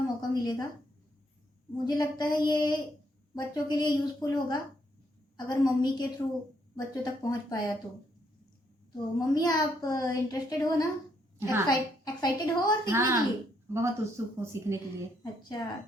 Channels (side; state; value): both; normal; correlation 0.73